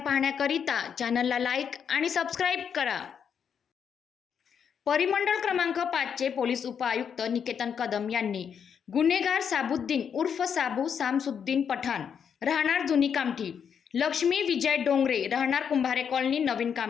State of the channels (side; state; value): right; quieter; 7.5 dB